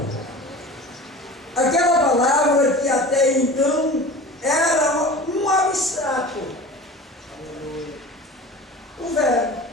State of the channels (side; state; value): both; normal; correlation 0.37